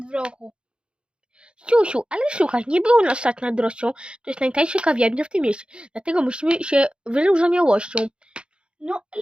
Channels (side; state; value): left; late; 0.055 ms